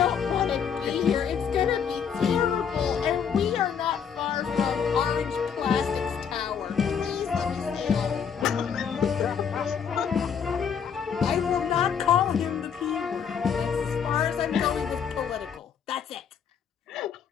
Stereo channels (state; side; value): quieter; right; 7.3 dB